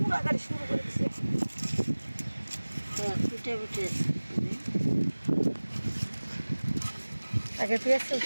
গাড়ি শুরু করে দিচ্ছে। আগে পেঁয়াজ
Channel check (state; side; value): inverted; both; correlation -1.00